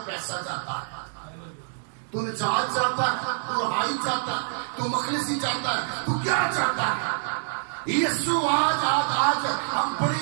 پیسہ چاہتا ہے، تو نجات چاہتا ہے، تو رہائی چاہتا ہے، تو مخلصی چاہتا ہے، تو کیا چاہتا ہے؟ یسوع آج ہم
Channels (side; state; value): left; silent; digital silence